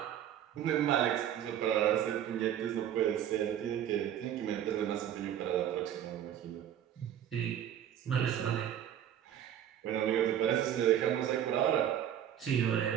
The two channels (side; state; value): left; quieter; 10.4 dB